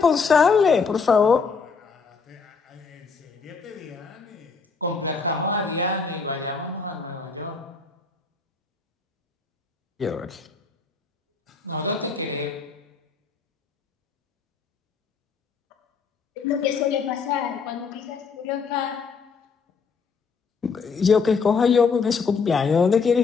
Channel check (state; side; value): quieter; right; 5.1 dB